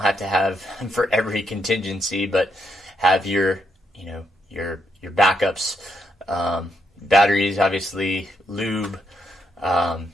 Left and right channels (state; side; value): normal; both; correlation 0.78